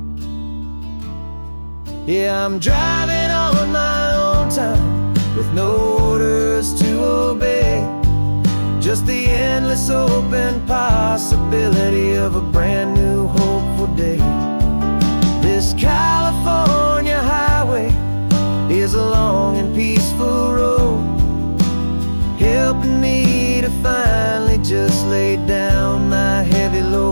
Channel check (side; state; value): both; inverted; correlation -1.00